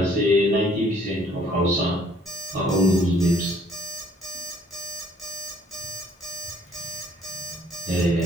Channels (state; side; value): normal; both; correlation 0.60